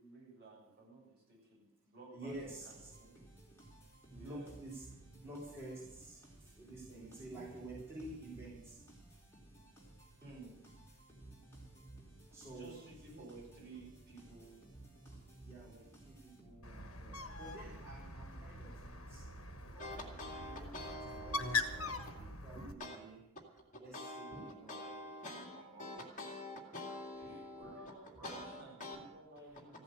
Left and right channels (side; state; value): both; normal; correlation 0.33